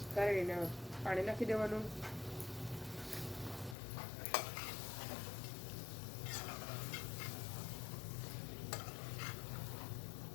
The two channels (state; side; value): drops out; right; at 3.8 s